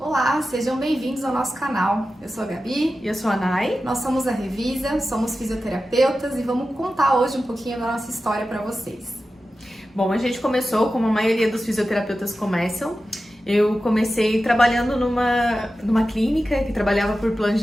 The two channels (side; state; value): both; normal; correlation 0.93